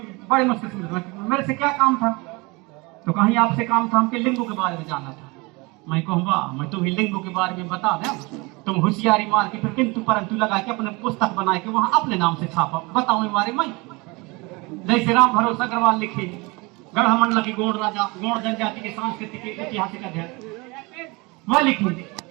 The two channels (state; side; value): quieter; left; 26.0 dB